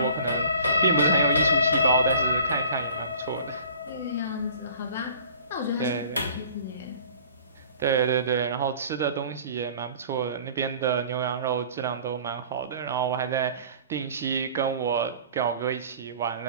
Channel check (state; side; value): inverted; both; correlation -0.48